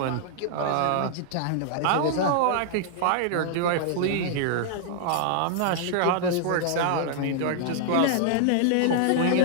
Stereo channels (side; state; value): both; different; correlation -0.01